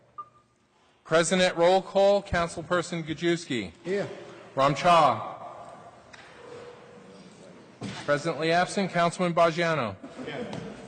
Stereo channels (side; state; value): both; identical; correlation 1.00